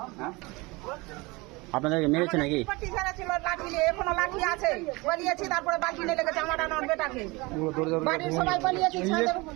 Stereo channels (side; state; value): left; quieter; 24.3 dB